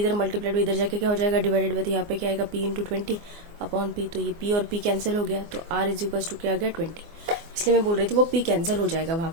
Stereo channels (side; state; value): left; late; 24 ms